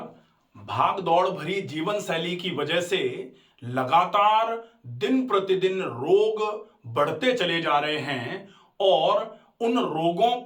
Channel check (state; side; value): identical; both; correlation 1.00